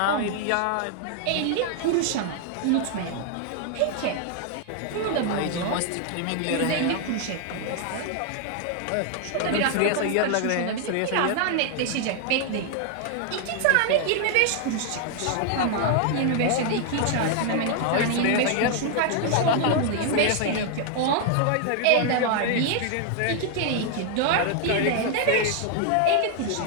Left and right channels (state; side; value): different; both; correlation 0.00